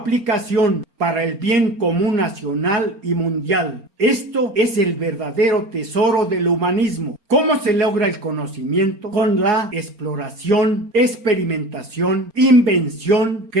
para el bien común nacional y mundial. Esto es el verdadero tesoro del humanismo. ¿Cómo se logra el conocimiento? Con la exploración, experimentación, invención,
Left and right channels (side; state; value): left; late; 4.3 ms